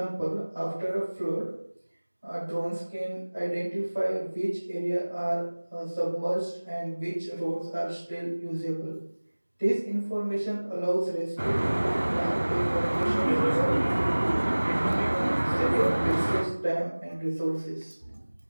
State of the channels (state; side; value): inverted; both; correlation -1.00